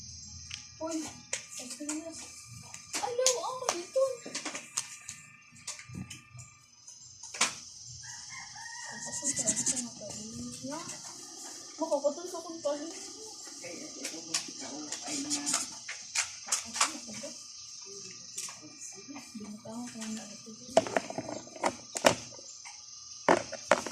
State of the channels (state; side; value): identical; both; correlation 1.00